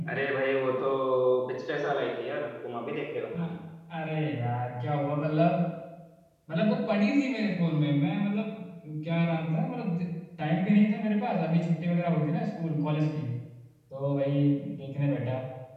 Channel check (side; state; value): both; identical; correlation 1.00